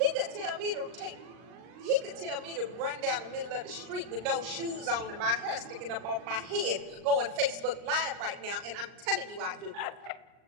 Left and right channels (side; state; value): left; late; 39 ms